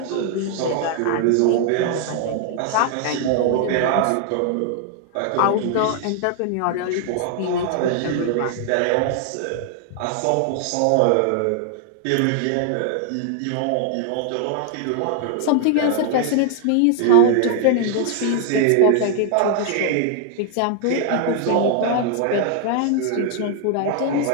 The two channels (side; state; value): both; different; correlation 0.00